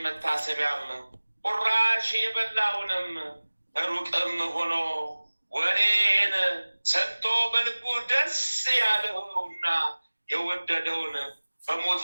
መታሰቢያም ቁራሽ የበላውንም ሩቅም ሆኖ ወሬን ሰጥቶ በልቡ ደስ ያለውና የወደደውን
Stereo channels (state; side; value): inverted; both; correlation -1.00